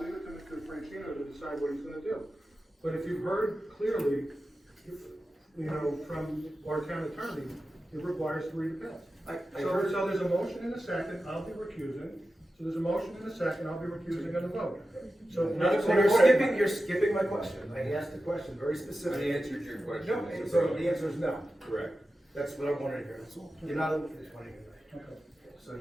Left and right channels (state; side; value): normal; both; correlation 0.93